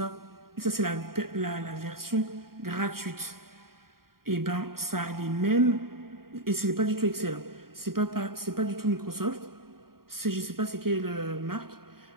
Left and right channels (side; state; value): left; late; 0.93 ms